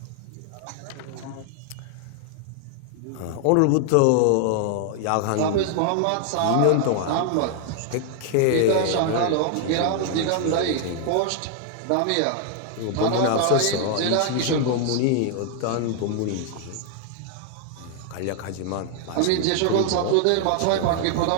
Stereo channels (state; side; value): different; both; correlation 0.00